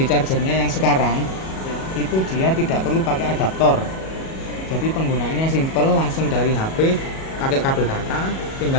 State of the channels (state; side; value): late; right; 37 ms